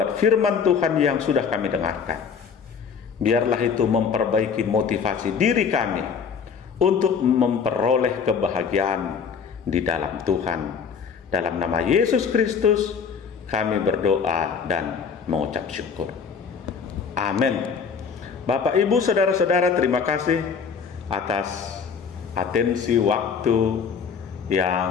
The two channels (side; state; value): right; quieter; 6.3 dB